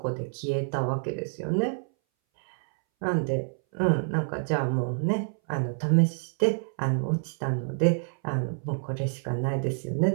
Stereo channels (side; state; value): left; silent; 60 dB below the other